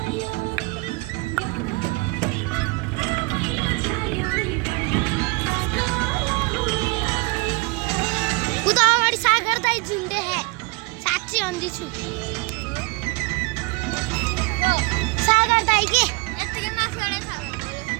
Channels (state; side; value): quieter; left; 26.7 dB